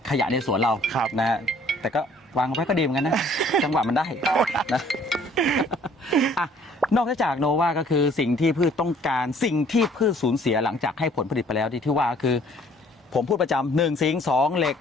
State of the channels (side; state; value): both; normal; correlation 0.58